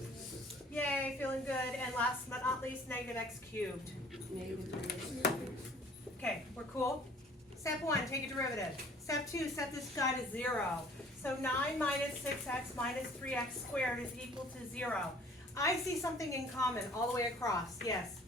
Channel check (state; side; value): normal; both; correlation 0.53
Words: Yay, feeling good. And last but not least, negative x cubed. Okay, we're cool? Step 1, take a derivative. Step 2, set this guy to 0. So 9 minus 6x minus 3x squared is equal to 0. I see something in common all the way across. Yes?